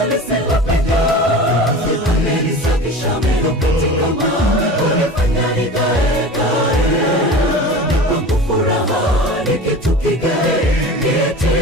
lisilopenya. Amenisafisha meno katika mawe, kunifanya nikae kwangu furaha ni kitu kigae,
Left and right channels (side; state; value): both; normal; correlation 0.34